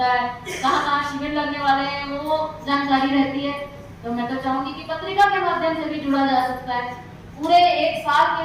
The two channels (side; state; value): both; identical; correlation 1.00